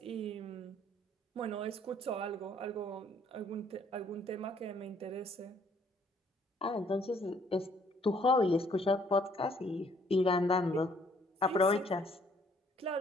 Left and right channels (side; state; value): both; normal; correlation 0.63